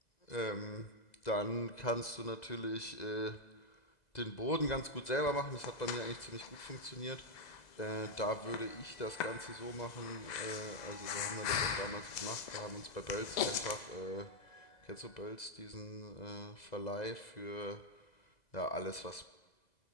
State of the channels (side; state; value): right; late; 2.0 ms